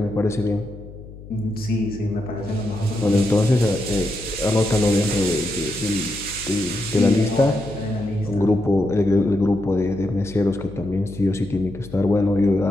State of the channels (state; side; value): noise; left; hum, 16 dB below the sound